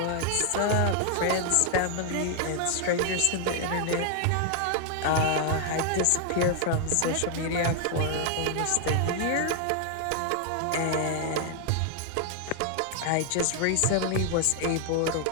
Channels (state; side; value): different; both; correlation 0.00